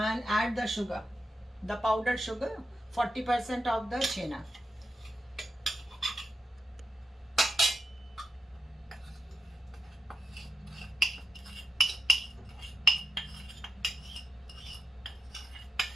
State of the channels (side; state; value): both; normal; correlation 0.84